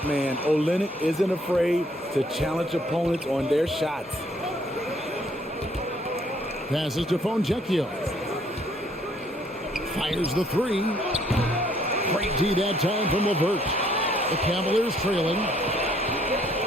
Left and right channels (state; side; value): normal; both; correlation 0.65